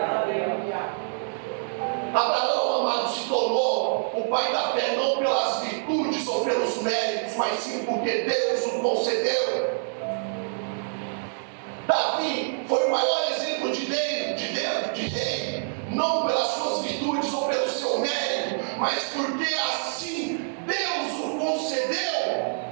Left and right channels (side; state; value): left; silent; digital silence